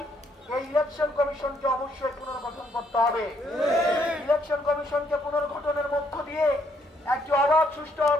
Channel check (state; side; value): normal; both; correlation 0.71